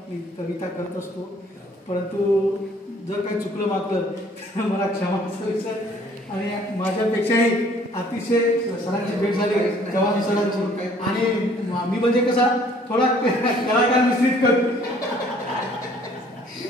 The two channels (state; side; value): normal; both; correlation 0.58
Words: मी कविता करत असतो, परंतु जर काही चुकलं मागलं तर मला क्षमा असायचं. आणि माझ्यापेक्षाही अतिशय सरांची भेट झाली चव्हाण सरांची, आणि मी म्हणजे कसा थोडा कलाकार मिश्रित करतो,